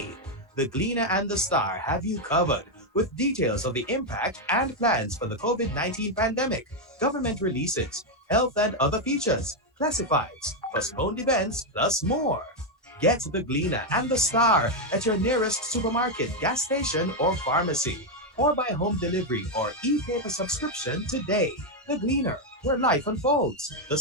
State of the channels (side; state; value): both; normal; correlation 0.03